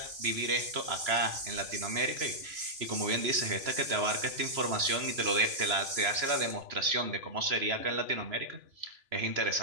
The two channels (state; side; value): late; left; 3.0 ms